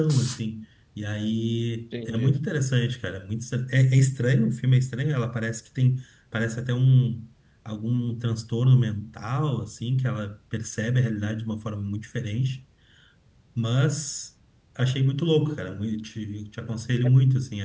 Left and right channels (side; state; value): both; identical; correlation 1.00